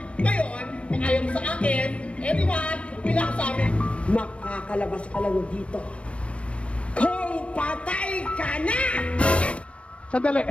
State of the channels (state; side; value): late; right; 0.061 ms